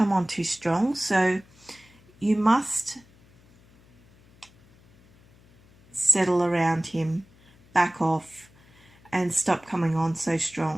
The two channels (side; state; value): left; noise; hum, 28 dB below the sound